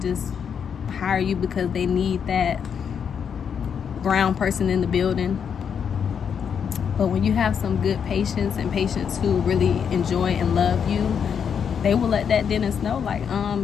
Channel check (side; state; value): right; quieter; 7.3 dB